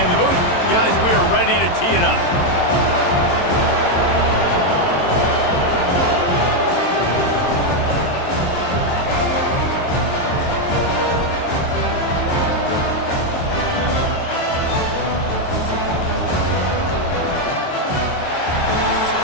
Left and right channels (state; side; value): late; right; 23 ms